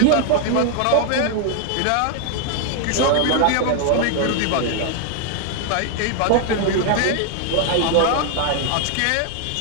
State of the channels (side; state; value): both; different; correlation 0.00